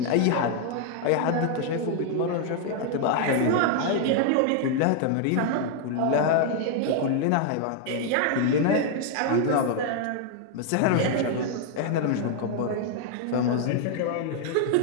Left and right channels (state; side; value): different; both; correlation 0.00